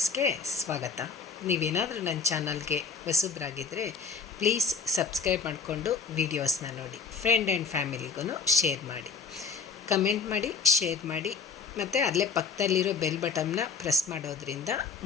ಸ್ವಾಗತ. ನೀವೇನಾದರೂ ನನ್ನ ಚಾನಲ್ಗೆ ಹೊಸಬ್ರಾಗಿದ್ದರೆ ಪ್ಲೀಸ್ ಸಬ್ಸ್ಕ್ರೈಬ್ ಮಾಡಿಕೊಂಡು ವೀಡಿಯೋಸ್ನ ನೋಡಿ. ಫ್ರೆಂಡ್ ಆ್ಯಂಡ್ ಫ್ಯಾಮಿಲಿಗೂ ಶೇರ್ ಮಾಡಿ, ಕಮೆಂಟ್ ಮಾಡಿ, ಶೇರ್ ಮಾಡಿ. ಮತ್ತು ಅಲ್ಲೇ ಪಕ್ಕದಲ್ಲಿರೋ ಬೆಲ್ ಬಟನ್ನ ಪ್ರೆಸ್ ಮಾಡೋದ್ರಿಂದ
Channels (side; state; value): right; quieter; 5.3 dB